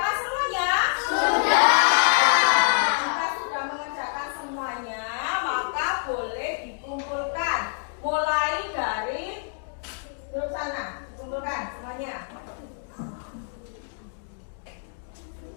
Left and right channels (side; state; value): right; silent; digital silence